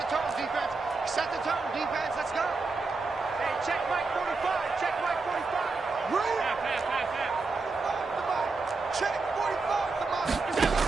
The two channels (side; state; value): left; quieter; 4.0 dB